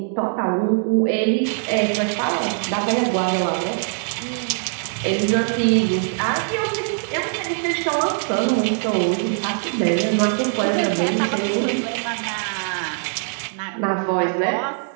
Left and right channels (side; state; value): left; silent; 56 dB below the other